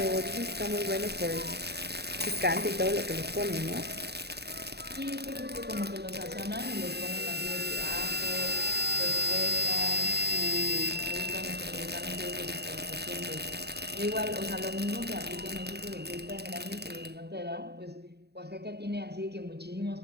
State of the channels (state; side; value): late; left; 0.48 ms